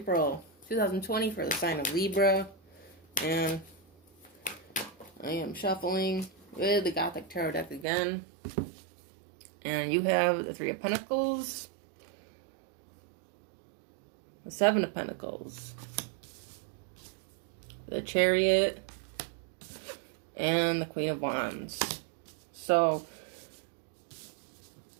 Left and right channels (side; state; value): left; drops out; at 7.9 s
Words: 2020 for the sign of Libra. And I am shuffling with the Gothic Tarot deck again. And you have the Three of Pentacles, the Seven of Pentacles, the Chariot, and the Queen of Wands. So